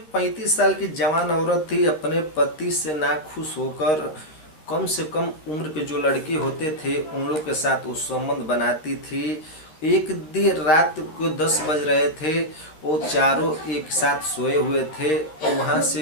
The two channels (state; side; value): late; right; 13 ms